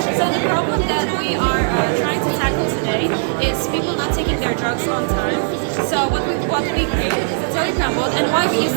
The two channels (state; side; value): silent; left; digital silence